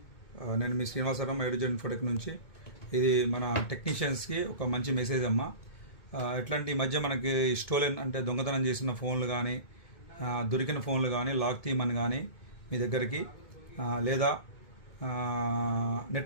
నేను మీ Srinivasarao ఎడ్యుజన్ Infotech నుంచి. ఇది మన టెక్నీషియన్స్కి ఒక మంచి మెసేజ్ అమ్మా. ఎట్లాంటి ఈ మధ్య మనకి స్టోలెన్ అంటే దొంగతనం చేసిన ఫోన్లు కానీ, దొరికిన ఫోన్లు కానీ, లాక్ తీయమని కానీ మీ దగ్గరికి, లేదా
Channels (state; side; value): late; right; 2.2 ms